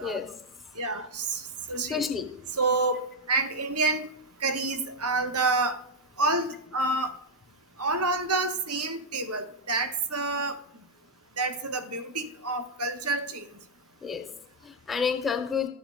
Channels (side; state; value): both; normal; correlation 0.00